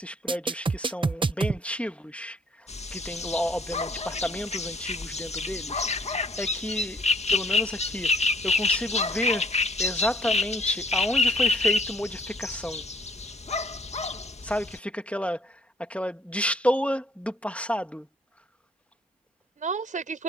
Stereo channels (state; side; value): normal; both; correlation 0.59